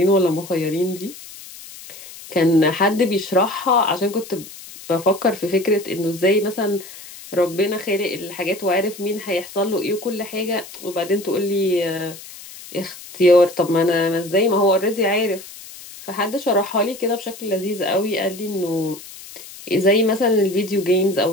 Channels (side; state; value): left; noise; hiss, 16 dB below the sound